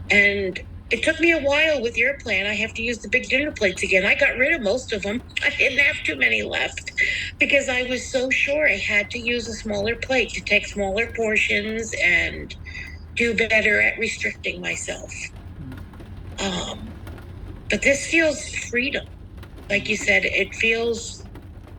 And it took me a while with your plan. I have to use the big dinner plates again. I got rid of most of them. I didn't have too many left because I was so sure I had to use a smaller plate to take smaller portions and do better at restricting myself. But this feels freedom. Like you said, it feels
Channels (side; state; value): both; identical; correlation 1.00